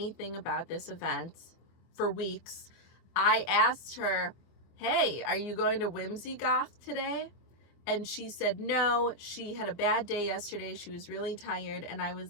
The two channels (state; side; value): late; right; 24 ms